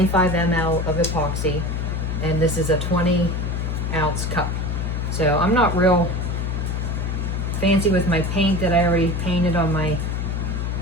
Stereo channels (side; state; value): left; noise; hum, 1 dB below the sound